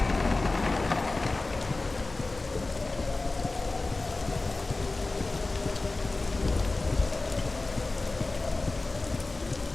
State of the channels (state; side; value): quieter; right; 3.3 dB